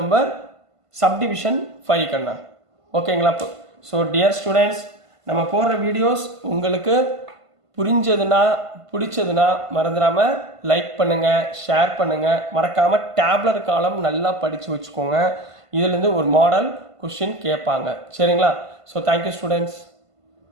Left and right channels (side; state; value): left; late; 1.5 ms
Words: subdivision 5 கண்ணா. ஓகேங்களா? ஸோ டியர் ஸ்டூடெண்ட்ஸ் நம்ம போடுற வீடியோஸ் உங்களுக்கு புரிஞ்சதுன்னா பிடிச்சதுன்னா மறந்துடாமல் லைக் பண்ணுங்கள் ஷேர் பண்ணுங்கள் மறக்காமல் டேப்லர் காலம் நல்லா படித்து வச்சுக்கோங்க. இதுலேருந்து ஒரு மாடல் கொஷின் கேட்பாங்க. சரிங்களா? So thank you students.